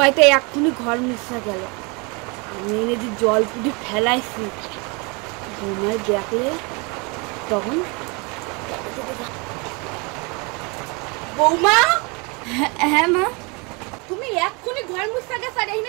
এক্ষুনি ঘর মুছা গেল, আমি এনে যে জল পুটি ফেলাইছি, বৌমায় দেখলে তখন বৌমা। হ্যাঁ মা, তুমি এক্ষুনি ঘর মুছা গেছ আর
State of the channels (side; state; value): left; quieter; 30.1 dB